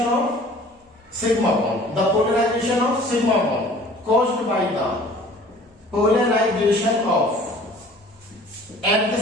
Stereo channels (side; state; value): both; normal; correlation 0.49